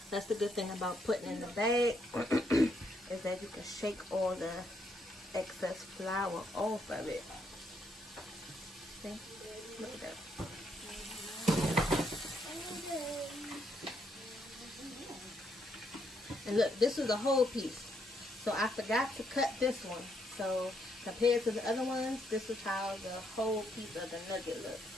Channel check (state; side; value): normal; both; correlation 0.75